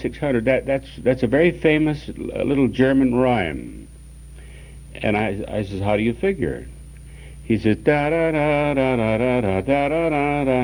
that's a very famous little German rhyme. And I says, how do you figure? He says,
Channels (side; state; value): both; identical; correlation 1.00